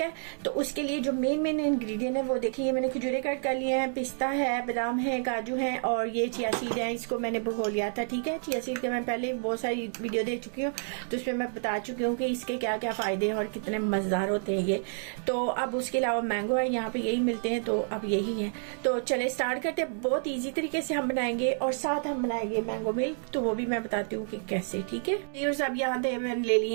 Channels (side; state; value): left; silent; 58 dB below the other